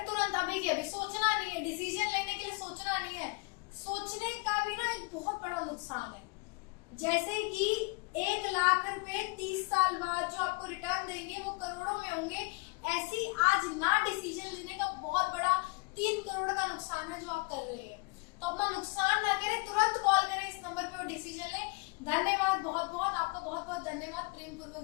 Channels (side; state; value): right; quieter; 30.4 dB